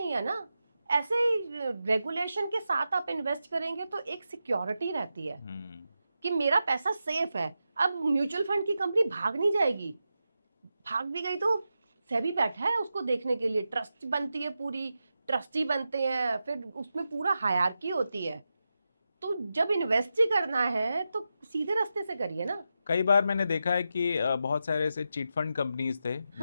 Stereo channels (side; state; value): both; inverted; correlation -0.89